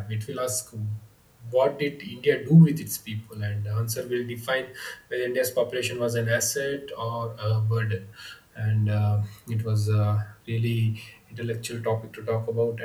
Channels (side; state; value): both; identical; correlation 1.00